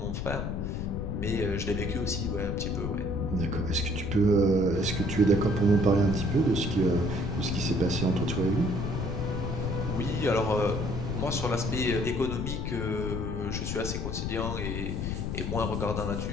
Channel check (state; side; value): noise; left; rumble, 3 dB below the sound